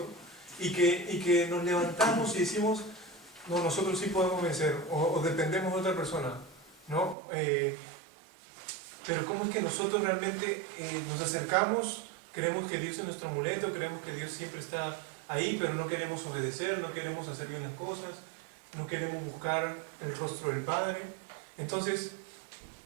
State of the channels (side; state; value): left; drops out; at 7.2 s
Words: y que nos levantamos y decimos, no, nosotros sí podemos vencer, o dependemos de otra persona, ¿no? Pero ¿cómo es que nosotros realmente nos acercamos? Creemos que Dios es nuestro amuleto, creemos que Dios siempre está ahí, pero no queremos obedecer, no queremos hacer bien las cosas, no queremos buscar el rostro del Padre. Entonces,